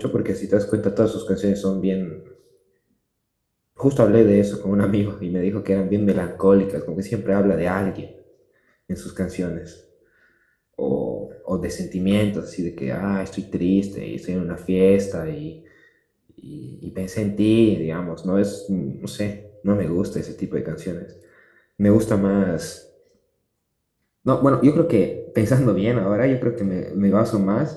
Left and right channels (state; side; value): identical; both; correlation 1.00